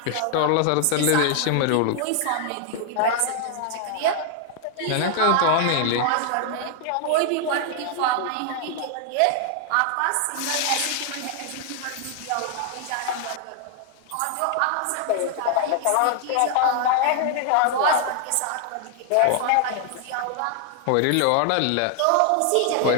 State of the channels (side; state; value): both; different; correlation 0.00